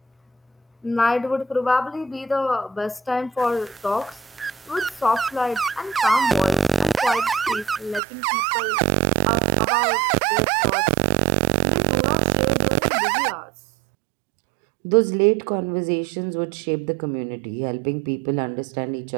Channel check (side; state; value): left; drops out; at 8.0 s